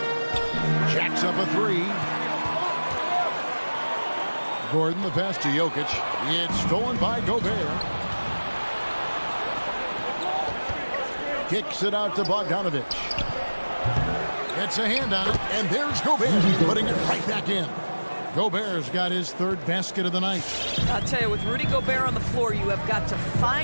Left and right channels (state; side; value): inverted; both; correlation -1.00